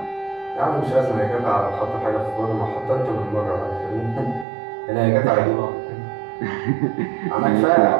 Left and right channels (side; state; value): left; drops out; at 4.5 s